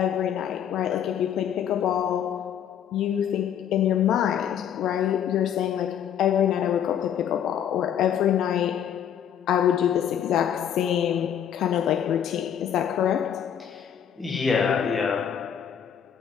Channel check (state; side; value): quieter; right; 9.1 dB